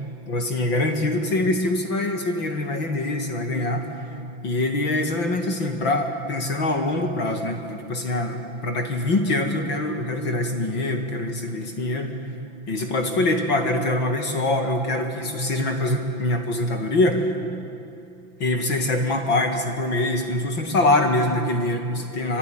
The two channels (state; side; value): late; right; 5.9 ms